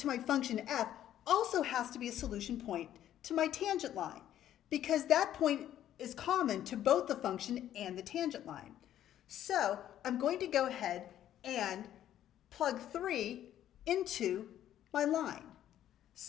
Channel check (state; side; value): quieter; right; 11.6 dB